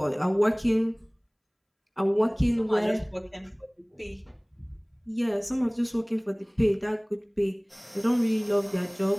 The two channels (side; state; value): both; identical; correlation 1.00